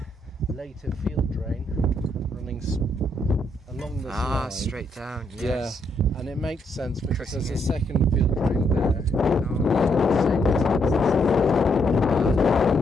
later field drain running along this line. Straight down, yes. Yeah, and it makes sense because Cutting there's a in. second field drain there.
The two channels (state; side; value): normal; both; correlation 0.75